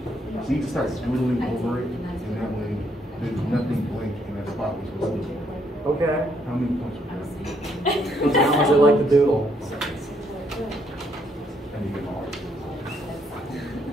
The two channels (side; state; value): both; normal; correlation 0.72